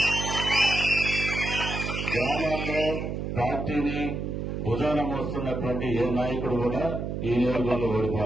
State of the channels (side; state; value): right; noise; hum, 4 dB below the sound